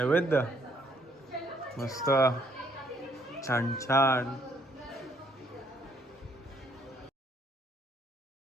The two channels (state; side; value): normal; both; correlation 0.68